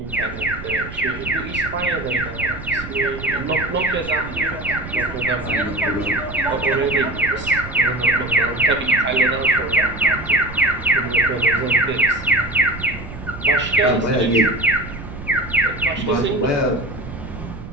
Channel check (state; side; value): noise; right; rumble, 12 dB below the sound